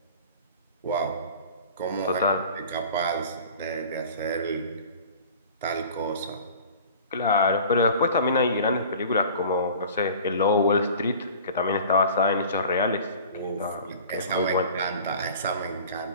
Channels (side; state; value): both; inverted; correlation -0.43